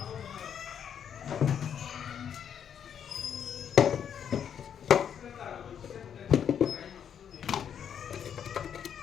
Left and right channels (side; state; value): right; quieter; 8.4 dB